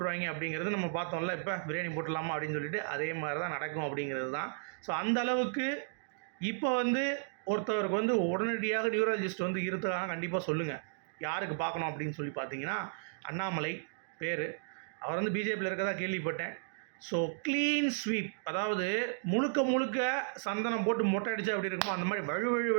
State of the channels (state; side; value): silent; left; digital silence